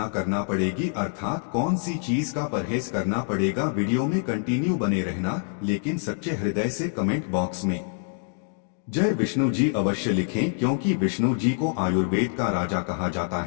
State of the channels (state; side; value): silent; right; 60 dB below the other